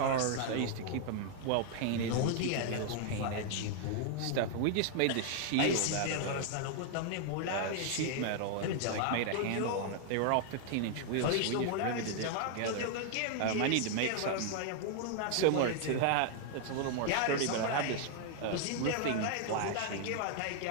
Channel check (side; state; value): both; different; correlation 0.00